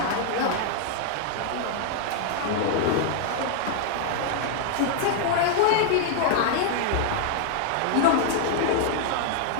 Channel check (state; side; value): different; both; correlation 0.00